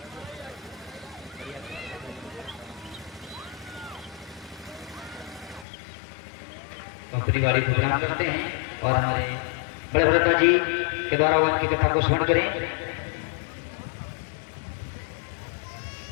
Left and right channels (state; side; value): drops out; right; at 5.7 s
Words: परिवारिक प्रोग्राम करते हैं, और हमारे बड़े भरत जी के द्वारा उनकी कथा को स्मरण करें।